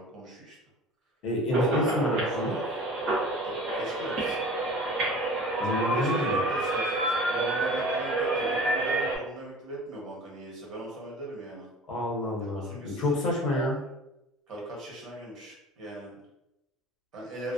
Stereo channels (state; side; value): normal; both; correlation 0.41